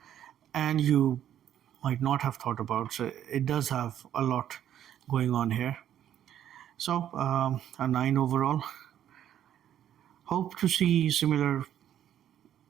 and you might not have thought about. So it does have a lot going on here. So a 9 overall. Hope to see similar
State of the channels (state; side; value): quieter; left; 10.6 dB